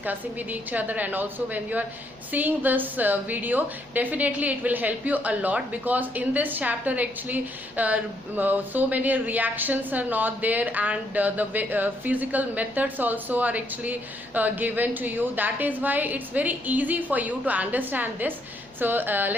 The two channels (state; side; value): normal; both; correlation 0.73